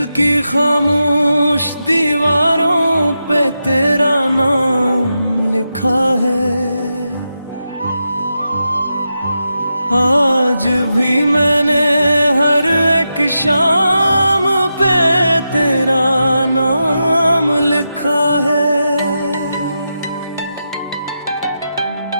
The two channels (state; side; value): inverted; both; correlation -0.88